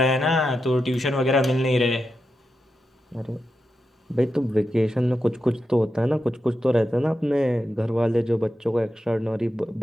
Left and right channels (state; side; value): normal; both; correlation 0.88